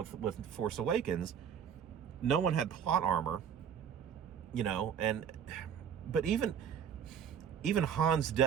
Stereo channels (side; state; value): left; quieter; 8.1 dB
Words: Force Awakens. No one had plot armor. But even Han's